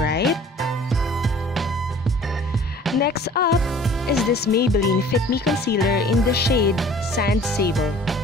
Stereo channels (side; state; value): both; normal; correlation 0.49